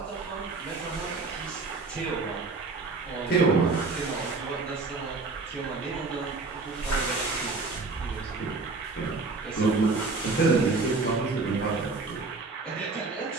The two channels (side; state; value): left; quieter; 3.9 dB